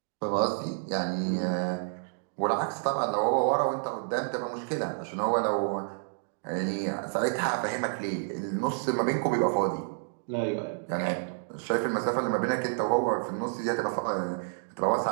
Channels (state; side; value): silent; left; digital silence